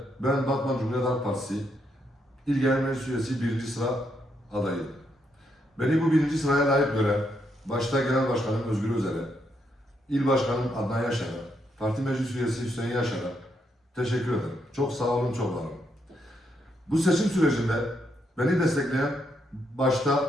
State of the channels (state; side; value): normal; both; correlation 0.77